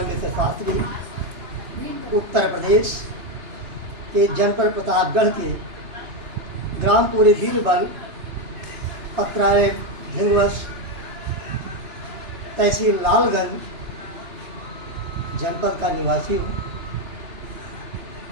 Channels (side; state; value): left; late; 2.9 ms